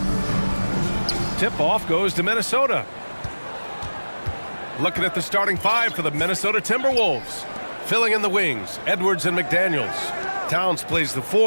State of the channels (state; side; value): inverted; both; correlation -1.00